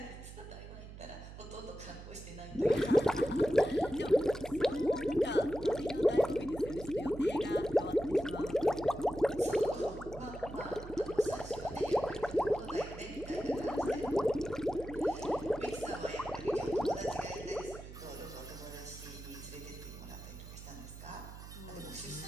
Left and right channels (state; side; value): noise; right; hum, 13 dB below the sound